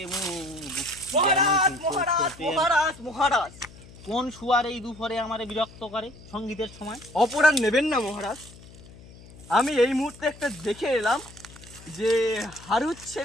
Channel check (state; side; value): noise; left; hum, 20 dB below the sound